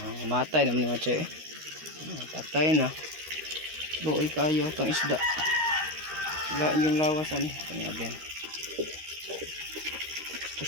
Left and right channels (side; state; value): left; late; 13 ms